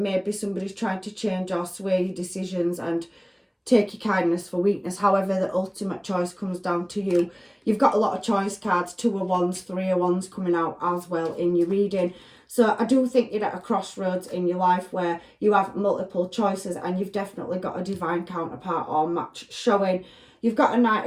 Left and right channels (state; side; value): identical; both; correlation 1.00